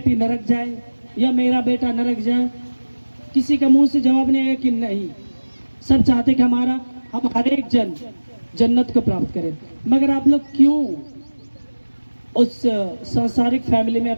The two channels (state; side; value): inverted; both; correlation -1.00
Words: नरक जाए या मेरा बेटा नरक जाए? किसी का मुंह से जवाब नहीं आएगा कि नहीं। सब चाहते कि हम हर एक जन जन्नत को प्राप्त करें। मगर आप लोग क्यों उस सांसारिक फैमिली में